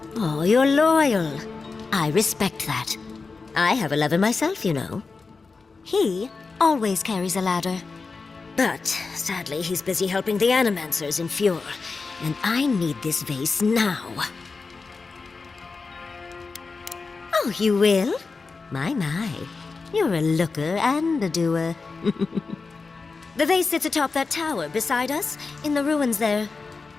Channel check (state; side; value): quieter; right; 4.3 dB